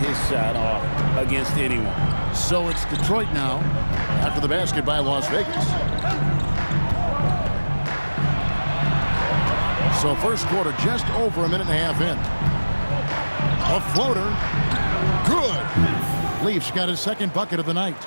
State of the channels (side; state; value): both; inverted; correlation -1.00